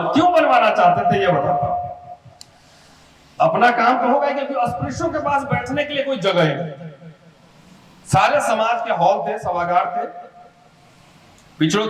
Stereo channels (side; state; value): both; identical; correlation 1.00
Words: क्यों बनवाना चाहते थे ये बताता हूं। अपना काम तो होगा, क्योंकि अस्पृश्यों के पास बैठने के लिए कोई जगह ही नहीं। सारे समाज के हॉल थे, सभागार थे, पिछड़ों